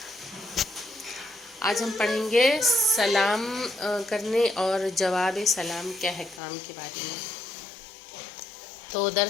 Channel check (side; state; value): right; drops out; at 6.4 s